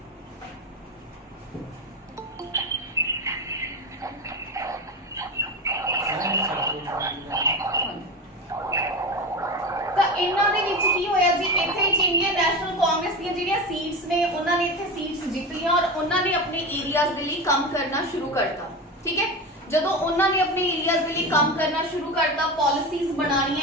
ਤਾਂ ਇਹਨਾਂ ਦੇ ਵਿੱਚ ਕੀ ਹੋਇਆ ਜੀ? ਇੱਥੇ ਇੰਡੀਅਨ ਨੈਸ਼ਨਲ ਕਾਂਗਰਸ ਦੀਆਂ ਜਿਹੜੀਆਂ ਸੀਟਸ ਨੇ ਉਹਨਾਂ ਨੇ ਇੱਥੇ ਸੀਟਸ ਜਿੱਤ ਲਈਆਂ ਔਰ ਉਹਨਾਂ ਨੇ ਆਪਣੇ ਏਰੀਆਜ਼ ਦੇ ਲਈ ਕੰਮ ਕਰਨਾ ਸ਼ੁਰੂ ਕਰਤਾ। ਠੀਕ ਹੈ, ਜਦੋਂ ਉਹਨਾਂ ਨੇ ਆਪਣੇ ਏਰੀਆਜ਼ ਦੇ ਲਈ ਕੰਮ ਕਰਨਾ ਸ਼ੁਰੂ ਕਰਤਾ, ਪਾਲਿਸੀਜ਼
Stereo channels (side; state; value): both; normal; correlation 0.23